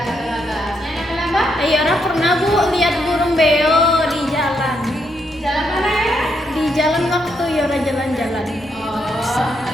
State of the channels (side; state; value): both; normal; correlation 0.78